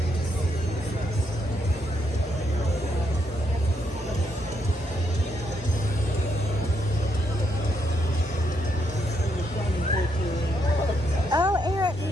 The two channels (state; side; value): normal; both; correlation 0.77